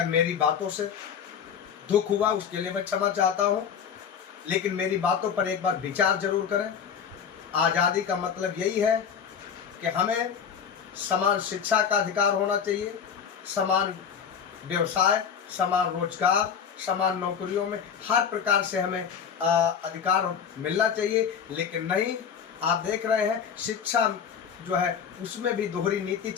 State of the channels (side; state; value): right; quieter; 7.4 dB